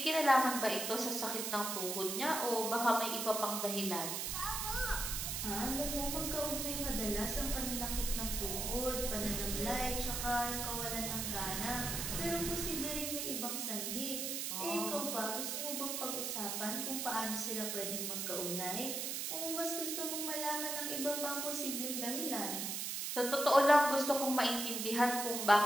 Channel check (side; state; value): right; noise; hiss, 2 dB below the sound